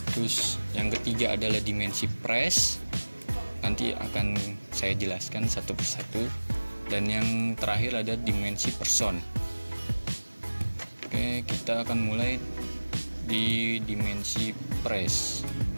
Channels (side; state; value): both; inverted; correlation -1.00